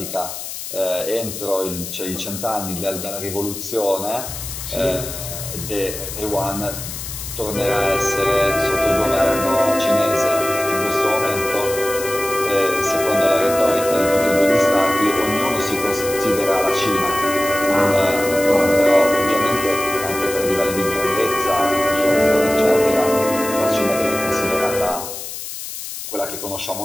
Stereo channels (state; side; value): noise; left; hiss, 8 dB below the sound